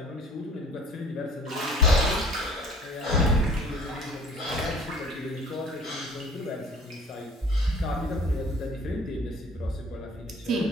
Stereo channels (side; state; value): both; normal; correlation 0.50